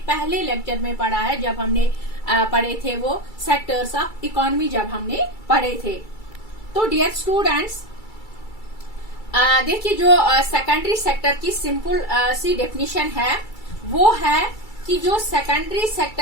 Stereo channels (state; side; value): late; right; 2.3 ms